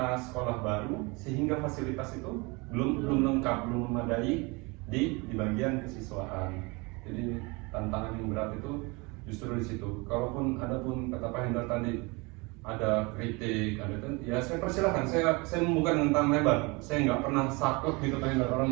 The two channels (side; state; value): left; quieter; 27.2 dB